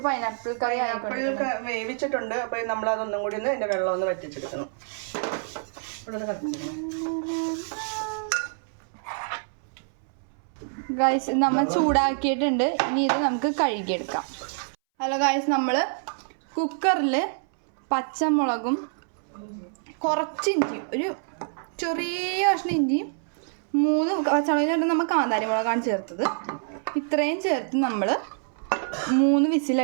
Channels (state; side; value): silent; left; 61 dB below the other